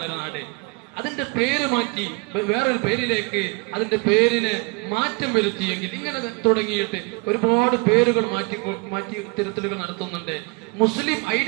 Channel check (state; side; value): quieter; left; 29.9 dB